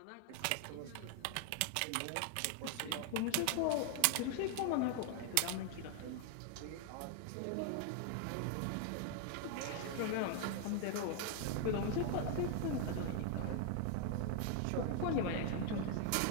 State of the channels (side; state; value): both; different; correlation 0.00